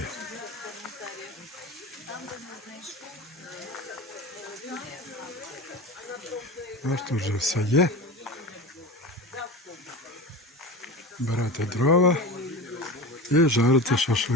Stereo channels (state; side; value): normal; both; correlation 0.30